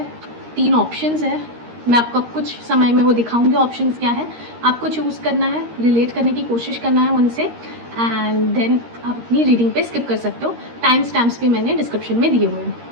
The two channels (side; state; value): left; late; 13 ms